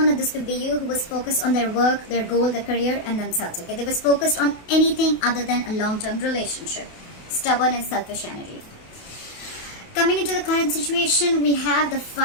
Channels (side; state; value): right; late; 28 ms